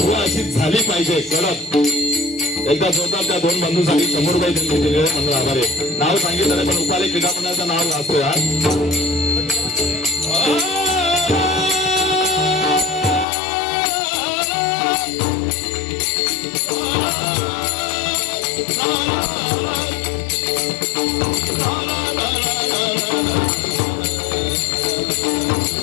बुवा अशीच झाली पाहिजे कडक. एकदा जोरदार त्या 2 बंधूंसाठी 100 रुपये त्यांनी दिलेले मंडळ आभार आहे. नाव सांगितलं नाही पण उपाले क्रीडा मंडळाचं नाव वाचतोय आज.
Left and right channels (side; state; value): right; drops out; at 13.2 s